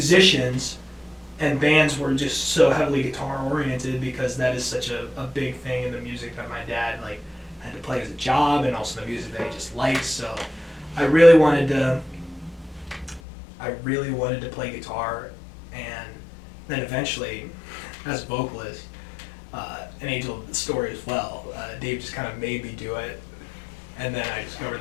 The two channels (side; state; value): right; drops out; at 13.2 s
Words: and bands were just so heavily guitar oriented because that is such a big thing in the music that my dad like had to play as a job, and also the music that he just likes. So I really wanted to play guitar, and then eventually as a vocalist, an angel of the story as well, Dave just kind of made me do it, and then I discovered